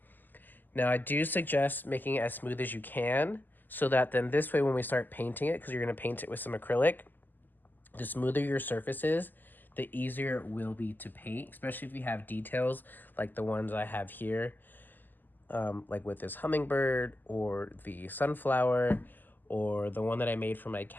Now, I do suggest making it as smooth as you can, so that then this way when we start painting it, because you're going to paint it with some acrylic, the smoother your surface is, the easier it will be to paint, especially if you have details like the ones I have here, like with this hummingbird or the sunflower, or the one that I made for my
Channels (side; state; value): right; late; 0.088 ms